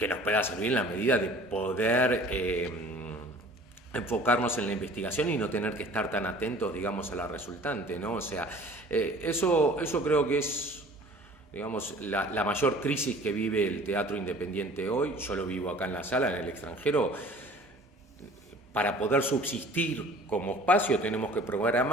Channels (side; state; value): both; normal; correlation 0.48